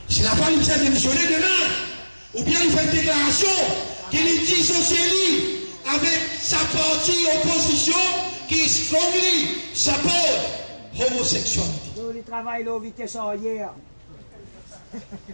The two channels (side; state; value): both; inverted; correlation -1.00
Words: S'il n'a pas besoin de démissionner demain, ou bien il fait une déclaration qu'il dissocie avec sa partie opposition qui strongly support homosexualité. Il travaille là, vitesse hier.